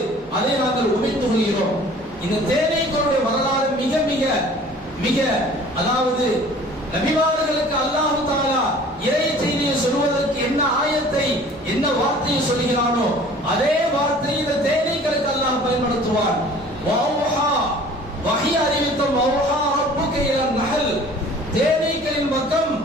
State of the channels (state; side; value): normal; both; correlation 0.48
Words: அதை நாங்கள் உமிழ்ந்து கொள்கிறோம். இந்த தேனீக்களுடைய வரலாறு மிக மிக மிக அதாவது நபிமார்களுக்கு அல்லாஹ் தஆலா இறை செய்தியை சொல்வதற்கு என்ன ஆயத்தை என்ன வார்த்தையை சொல்கிறானோ அதே வார்த்தையை இந்த தேனீக்களுக்கு அல்லாஹ் பயன்படுத்துவார். வௌஹா வஹி அறிவித்தம் வௌஹா ரப்புக இலா நஹல், தேனீக்களின் பக்கம்